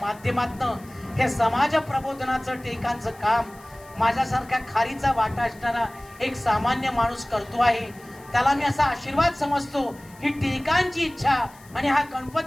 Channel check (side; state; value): left; noise; hiss, 25 dB below the sound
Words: हे समाज प्रबोधनाचं टिळकांचं काम माझ्यासारख्या खारीचा वाटा असणारा एक सामान्य माणूस करतो आहे. त्याला मी असा आशीर्वाद समजतो, ही टिळकांची इच्छा आणि हा